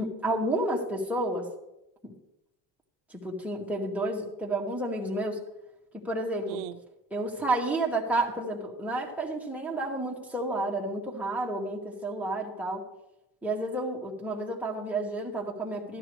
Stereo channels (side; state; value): both; normal; correlation 0.49